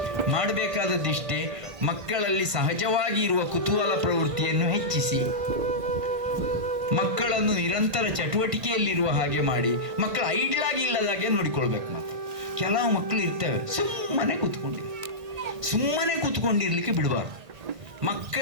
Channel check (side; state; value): left; late; 1.6 ms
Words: ಮಾಡಬೇಕಾದದ್ದಿಷ್ಟೇ, ಮಕ್ಕಳಲ್ಲಿ ಸಹಜವಾಗಿ ಇರುವ ಕುತೂಹಲ ಪ್ರವೃತ್ತಿಯನ್ನು ಹೆಚ್ಚಿಸಿ, ಮಕ್ಕಳನ್ನು ನಿರಂತರ ಚಟುವಟಿಕೆಯಲ್ಲಿರುವ ಹಾಗೆ ಮಾಡಿ, ಮಕ್ಕಳು ಐಡ್ಲಾಗಿ ಇಲ್ಲದಾಗೆ ನೋಡಿಕೊಳ್ಬೇಕು. ಮತ್ತೆ ಕೆಲವು ಮಕ್ಕಳು ಇರ್ತವೆ ಸುಮ್ಮನೆ ಕೂತ್ಕೊಂಡಿರ್ಲಿಕ್ಕೆ ಬಿಡಬಾರ್ದು.